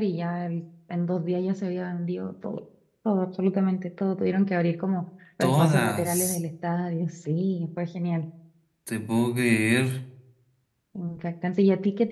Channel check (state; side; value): identical; both; correlation 1.00